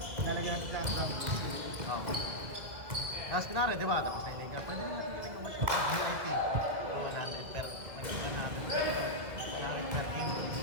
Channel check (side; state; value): left; late; 2.2 ms